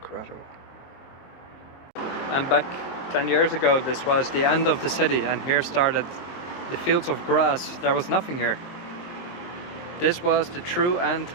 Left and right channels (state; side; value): late; right; 23 ms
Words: I'm back 10 years ago. This was the end of the city, and here started the fields of grass. There was nothing here. This was the true end